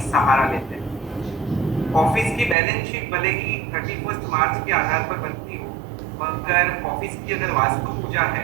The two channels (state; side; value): drops out; left; at 2.6 s